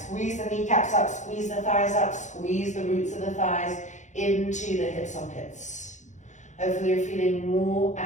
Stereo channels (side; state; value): right; late; 0.35 ms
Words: the kneecaps up, squeeze the thighs up, squeeze the roots of the thighs into the hip sockets. Hopefully you're feeling more